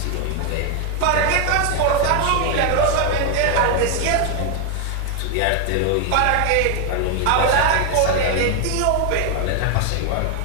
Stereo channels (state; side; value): different; both; correlation 0.01